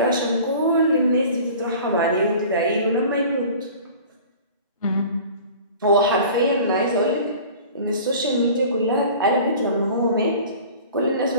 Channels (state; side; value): inverted; both; correlation -0.43